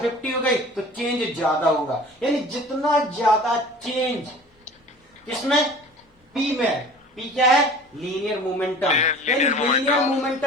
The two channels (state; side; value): normal; both; correlation 0.43